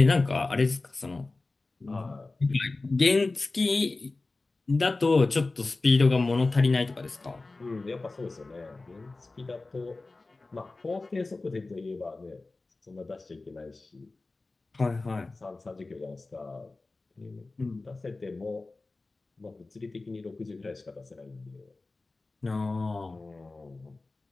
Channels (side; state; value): right; quieter; 3.4 dB